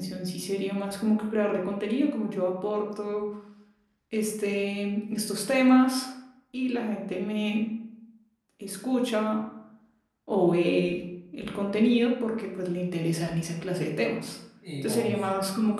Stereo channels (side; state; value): both; identical; correlation 1.00